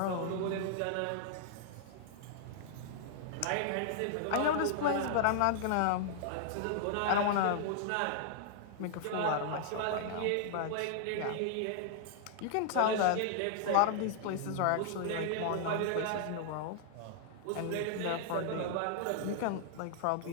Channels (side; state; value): both; different; correlation -0.01